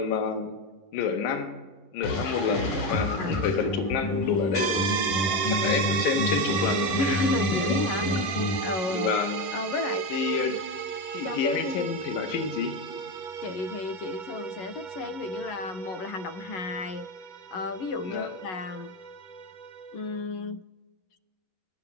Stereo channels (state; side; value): late; right; 10 ms